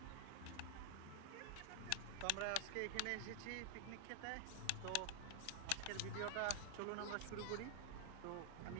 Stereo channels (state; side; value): different; both; correlation 0.00